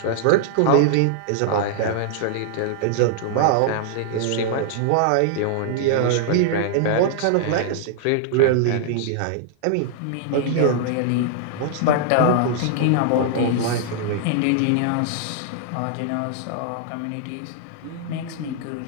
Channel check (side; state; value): both; different; correlation -0.01